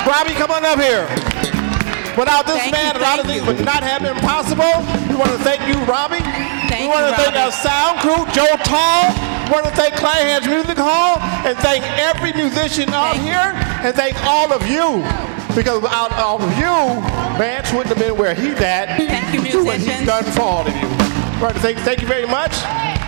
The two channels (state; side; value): silent; left; digital silence